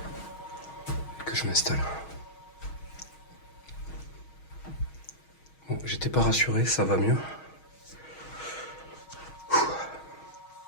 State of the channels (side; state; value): right; late; 6.3 ms